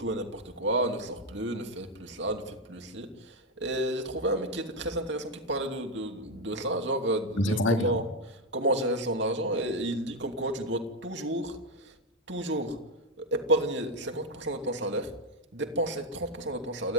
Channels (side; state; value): both; normal; correlation 0.07